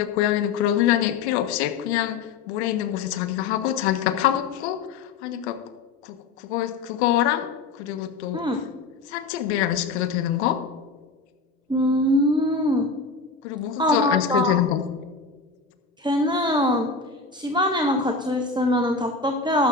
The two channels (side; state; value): right; quieter; 4.6 dB